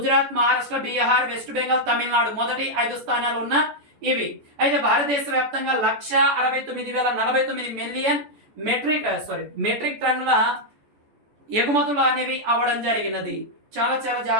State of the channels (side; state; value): left; late; 14 ms